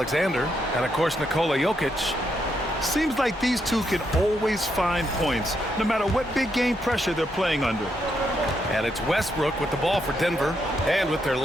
And, of course, Nikola Jokic. Seems like these two can always find points, no matter what big game pressure they're playing under. And it's Westbrook with the ball for Denver. And with their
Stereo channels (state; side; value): normal; both; correlation 0.79